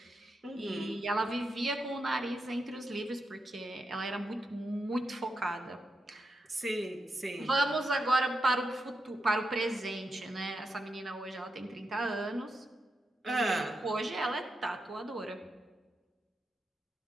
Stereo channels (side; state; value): both; normal; correlation 0.86